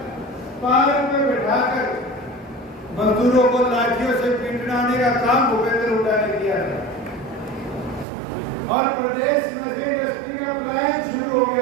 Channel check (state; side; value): drops out; left; at 8.1 s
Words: पार्क में बैठाकर मजदूरों को लाठियों से पीटने का काम भूपेंद्र हुड्डा ने किया था और प्रदेश में से इंडस्ट्री का पलायन शुरू हो